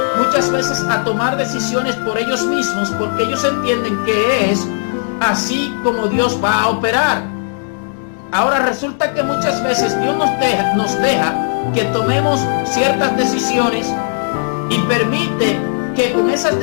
muchas veces a tomar decisiones por ellos mismos, porque ellos entienden que es así como Dios va a operar. Ahora resulta que muchas veces Dios nos deja que tomemos ciertas decisiones y permite que con esas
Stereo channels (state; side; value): silent; right; digital silence